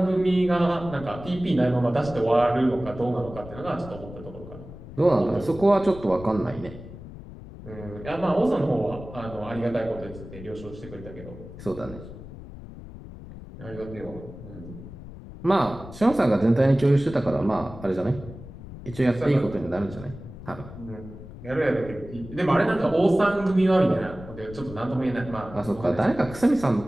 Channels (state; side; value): noise; left; rumble, 14 dB below the sound